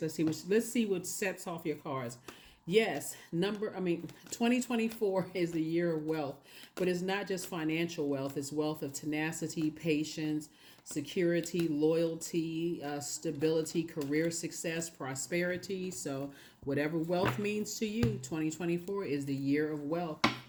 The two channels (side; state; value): both; identical; correlation 1.00